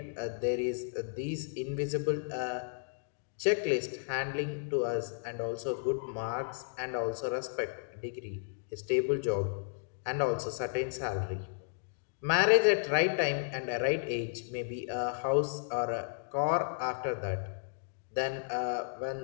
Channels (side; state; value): right; silent; digital silence